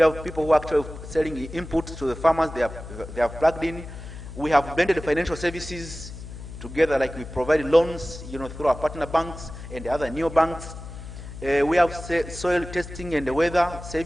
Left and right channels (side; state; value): left; noise; hum, 12 dB below the sound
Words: have people who are actually selling inputs to the farmers, they have plugged in. We have blended financial services together, like we provide loans, through our partner banks and the other neo banks. We have soil testing and the weather